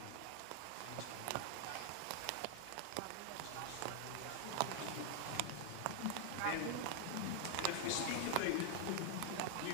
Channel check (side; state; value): both; different; correlation 0.00